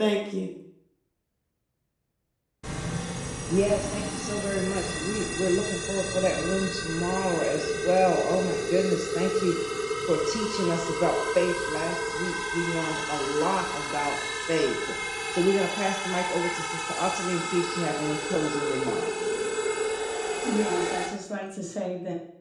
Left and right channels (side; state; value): both; identical; correlation 1.00